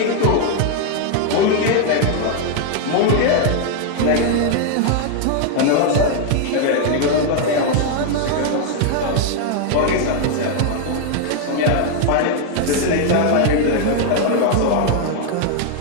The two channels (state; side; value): different; both; correlation 0.00